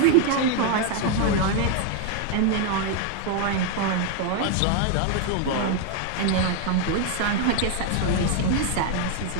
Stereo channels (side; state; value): both; different; correlation 0.01